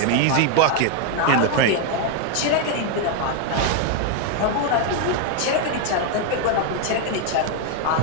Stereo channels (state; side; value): different; both; correlation 0.01